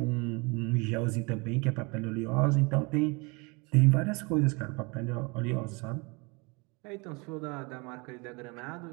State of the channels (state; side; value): quieter; left; 28.8 dB